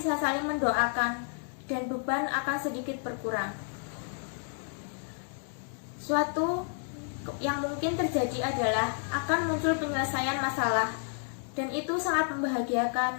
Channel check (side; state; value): right; silent; 57 dB below the other